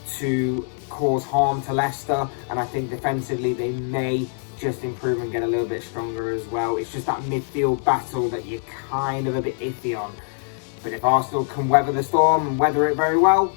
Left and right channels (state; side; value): silent; right; 63 dB below the other